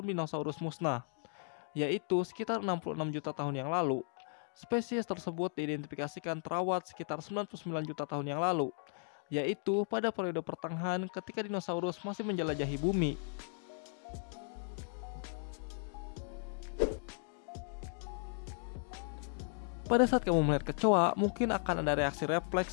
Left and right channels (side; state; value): right; silent; 54 dB below the other